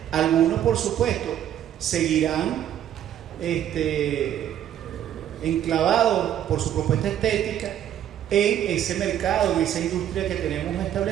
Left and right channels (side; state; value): left; quieter; 10.8 dB